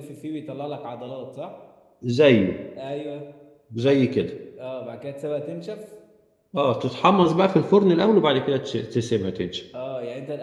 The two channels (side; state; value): both; identical; correlation 1.00